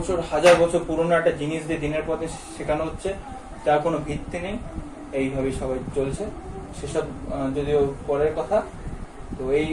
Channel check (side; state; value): both; identical; correlation 1.00